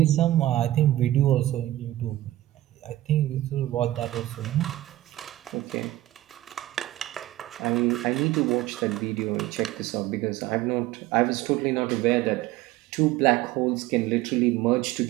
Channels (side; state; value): left; quieter; 15.4 dB